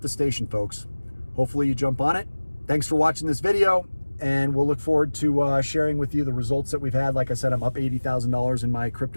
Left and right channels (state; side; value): inverted; both; correlation -1.00